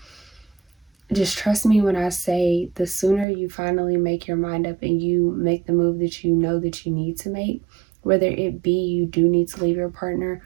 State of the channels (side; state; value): left; drops out; at 3.2 s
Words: just trust me when I say, the sooner you finally make your mind up and you make the move that you know that you need to make, whether it be you do need to leave your partner,